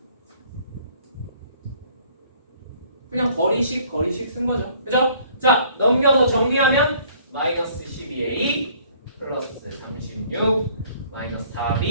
그냥 거리식 쓴 거죠. 그죠? 자, 넘겨서 정리하면 마이너스 12a 플러스 36 마이너스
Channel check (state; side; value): inverted; both; correlation -0.58